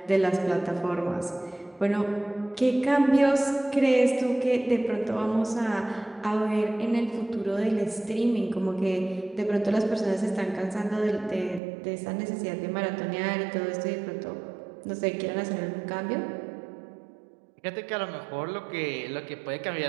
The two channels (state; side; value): drops out; left; at 11.6 s